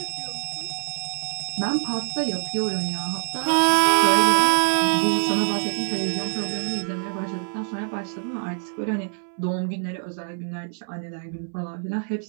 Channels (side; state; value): left; silent; 61 dB below the other